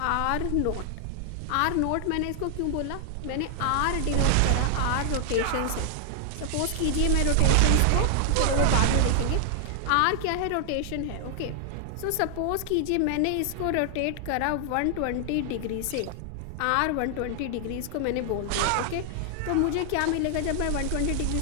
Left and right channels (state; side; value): different; both; correlation 0.00